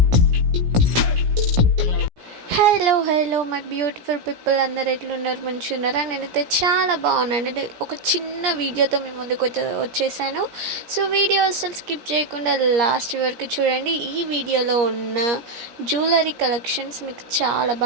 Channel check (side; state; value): left; late; 17 ms